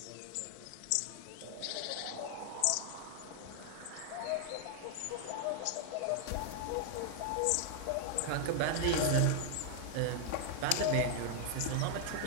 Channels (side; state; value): both; different; correlation 0.00